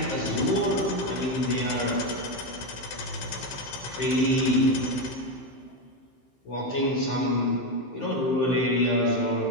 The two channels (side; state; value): right; late; 15 ms